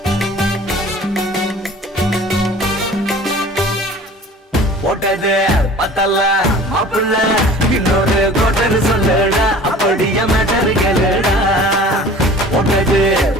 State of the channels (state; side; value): normal; both; correlation 0.44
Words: பத்தல மாப்பிள்ள இன்னொரு கோட்டர் சொல்லுடா அப்படிய மேட்டர் கேளுடா ஒன்னது